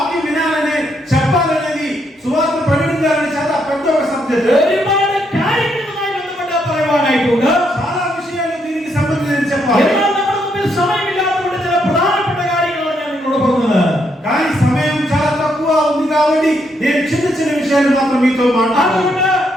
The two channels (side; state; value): both; normal; correlation 0.76